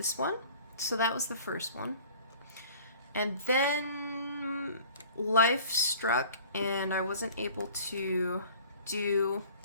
one. So that was the first one. And then life struck and I wasn't able to do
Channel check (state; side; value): inverted; both; correlation -0.47